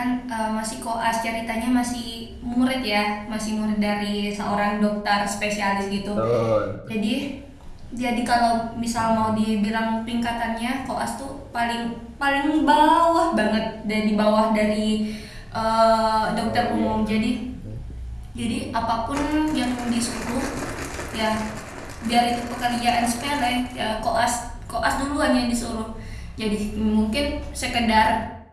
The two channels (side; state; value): both; identical; correlation 1.00